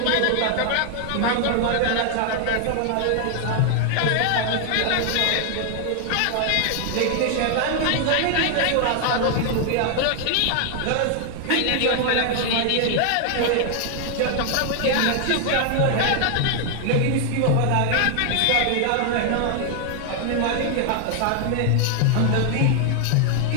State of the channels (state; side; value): different; both; correlation 0.00